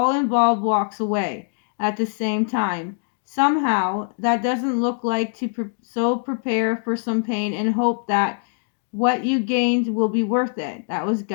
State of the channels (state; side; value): silent; right; 61 dB below the other